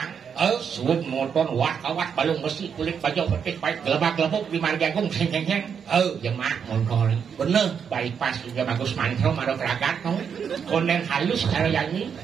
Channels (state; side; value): quieter; left; 7.2 dB